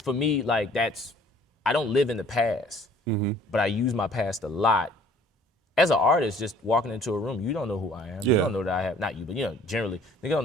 for me, like I don't live in the past, but I use my past a lot. As an artist, just walking into a room, you don't know who I am. Yeah. You don't know that I have, not you, but generally, they don't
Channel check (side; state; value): both; normal; correlation 0.55